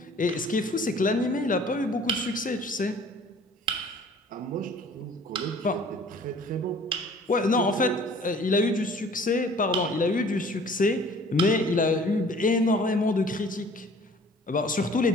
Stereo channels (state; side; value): normal; both; correlation 0.50